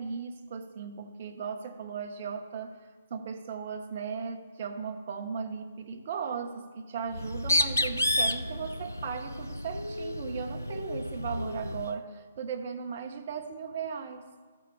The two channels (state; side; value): inverted; both; correlation -0.70